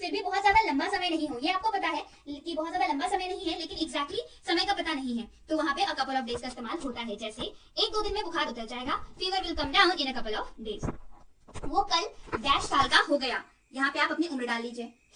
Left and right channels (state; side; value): identical; both; correlation 1.00